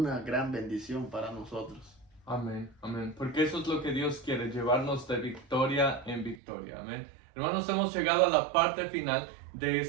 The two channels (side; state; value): left; drops out; at 6.4 s